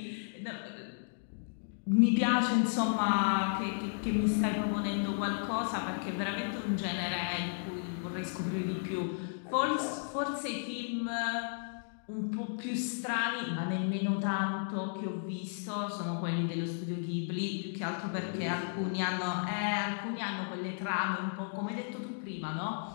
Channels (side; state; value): right; silent; digital silence